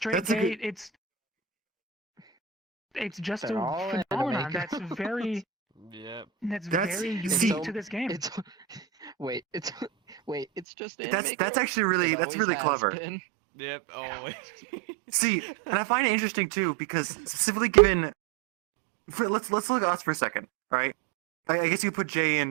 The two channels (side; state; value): left; drops out; at 10.7 s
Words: That's a gay. good- It's just They're a all phenomenon anime that's very Yep. That's- very unique see- to this game. It's it's just anime That's girls? actually really It that's always really has clever. been. Yep. Always. See, and I find it interesting too because specifically given, let's look at us for a second, all right? I guess you put Jay